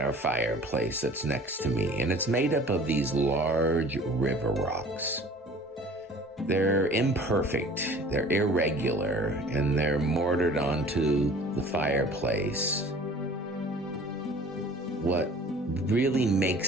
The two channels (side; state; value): both; normal; correlation 0.47